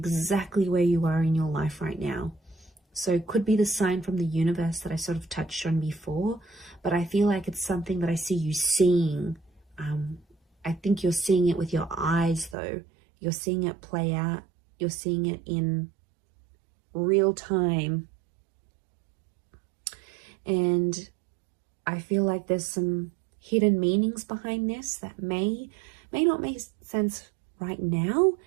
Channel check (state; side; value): drops out; left; at 12.6 s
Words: where you are in your life right now. So it could be the sign from the universe that I sort of touched on before, but I feel like it's something that I see you seeing. I think you're seeing it with your eyes though. You're seeing it play out. You're seeing it in real time. And I feel like there's some hidden meanings behind this that may not make sense right now,